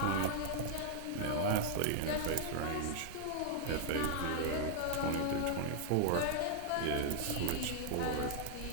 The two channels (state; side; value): different; both; correlation -0.01